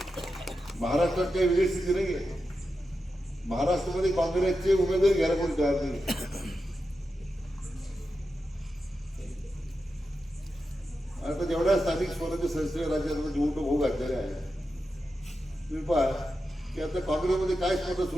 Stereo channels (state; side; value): normal; both; correlation 0.89